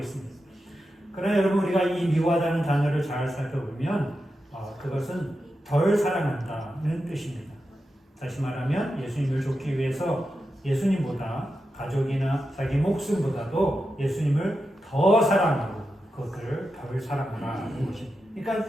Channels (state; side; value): normal; both; correlation 0.89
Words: 그러나 여러분 우리가 이 미워하다는 단어를 잘 살펴보면 그것은 덜 사랑한다는 뜻입니다. 다시 말하면 예수님을 좇기 위해서 예수님보다 가족이나 자기 목숨보다도 예수님을 더 사랑하고 그것을 덜 사랑하라는 것입니다.